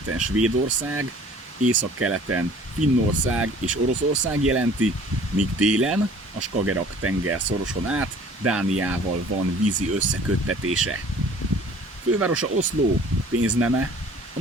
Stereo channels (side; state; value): both; normal; correlation 0.51